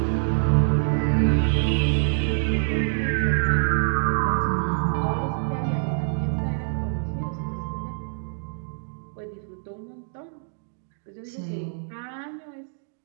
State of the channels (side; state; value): left; silent; digital silence